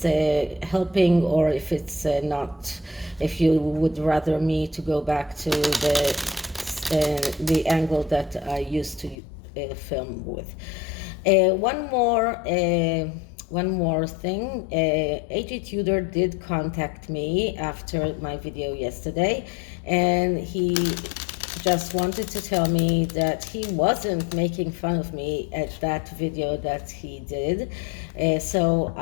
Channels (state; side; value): drops out; right; at 9.2 s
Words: helping or if it's not, if you would rather me to go back to the angle that I used to film with. One more thing. GETTR did contact me after my video yesterday, and he just wanted to tell me that he wasn't making fun of me at that video that he did. So